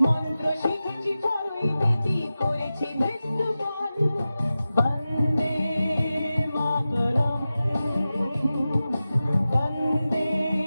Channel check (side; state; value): both; inverted; correlation -0.94